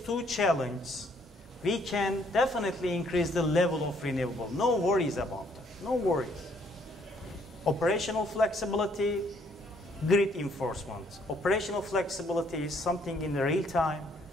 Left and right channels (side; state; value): both; normal; correlation 0.66